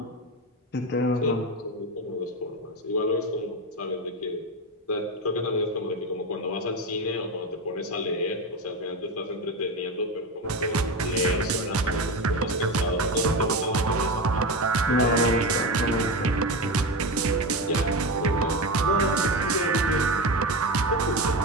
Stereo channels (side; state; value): both; normal; correlation 0.19